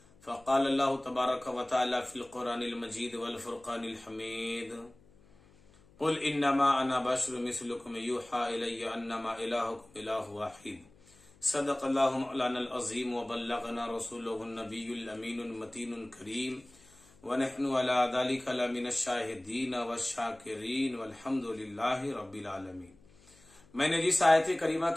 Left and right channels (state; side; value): noise; left; hum, 27 dB below the sound